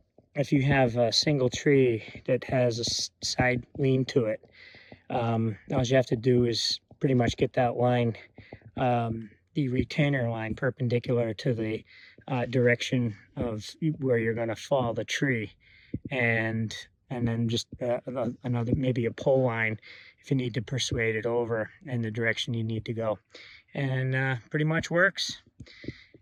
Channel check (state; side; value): identical; both; correlation 1.00